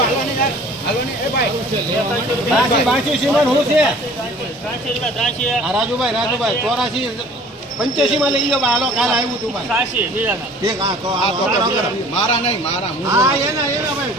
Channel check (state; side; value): normal; both; correlation 0.49